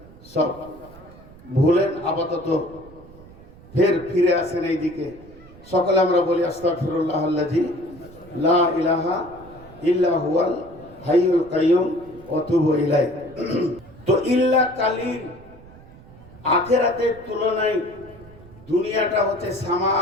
সব ভুলেন আপাতত ফের ফিরে আসেন এই দিকে। সকলে আমরা বলি আস্তাগফিরুল্লাহ আল্লাযী লা ইলাহা ইল্লা হুয়াল হাইয়ুল কাইয়ুম ওয়া তুবু ইলাইহি। তো ইল্লা কালিল, আখিরাতের তুলনায় দুনিয়াটা হচ্ছে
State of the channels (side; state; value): right; noise; rumble, 21 dB below the sound